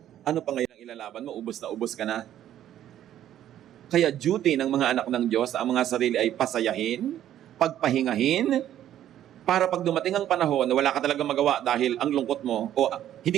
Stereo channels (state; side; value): quieter; left; 11.5 dB